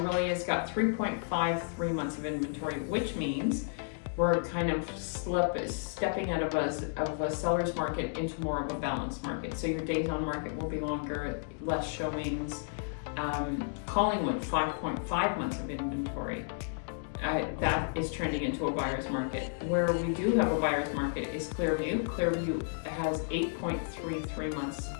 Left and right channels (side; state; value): right; silent; digital silence